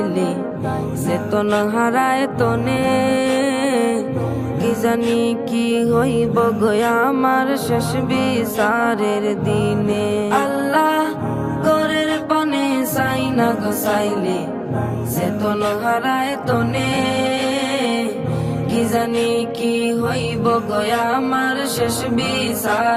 চেতন হারায় তনে, কি জানি কি হইব গয়া আমার শেষ বিচারের দিনে। আল্লাহ ঘরের পানে চাই না গোসাইলে চেতন হারায় তনে, কি জানি কি হইব গয়া আমার শেষ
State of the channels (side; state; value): both; identical; correlation 1.00